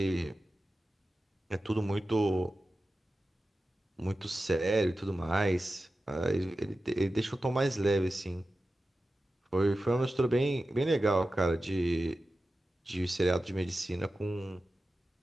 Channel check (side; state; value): both; normal; correlation 0.93